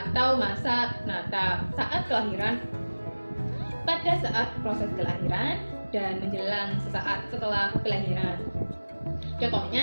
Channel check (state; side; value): inverted; both; correlation -1.00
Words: masa natal saat kelahiran. Pada saat proses kelahiran dan menjelang sesaat setelah kelahiran.